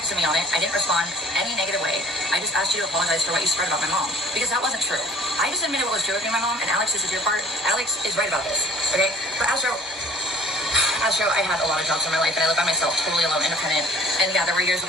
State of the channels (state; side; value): normal; both; correlation 0.50